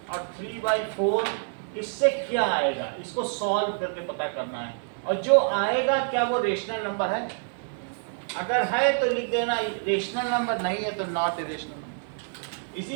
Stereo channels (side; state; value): left; silent; 60 dB below the other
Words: और 3/4 इससे क्या आएगा, इसको सॉल्व करके पता करना है। और जो आएगा क्या वो रेशनल नंबर है? अगर है तो लिख देना रेशनल नंबर, नहीं है तो नॉट ए रेशनल नंबर।